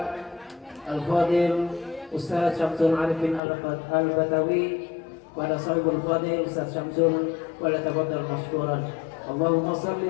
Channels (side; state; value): right; drops out; at 3.4 s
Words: Al-Fadil Ustaz Syamsul Arifin Al-Batawi pada sahibul Fadil Ustaz Syamsul wala tafaddal mashkuran. Allahumma salli